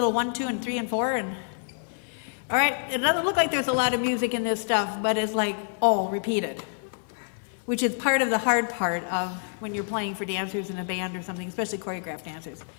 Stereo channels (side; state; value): right; silent; 60 dB below the other